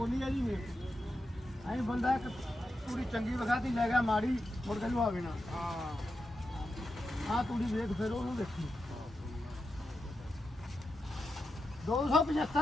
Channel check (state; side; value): normal; both; correlation 0.88